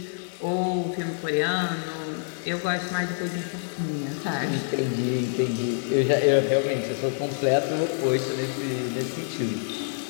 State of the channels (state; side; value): silent; right; 61 dB below the other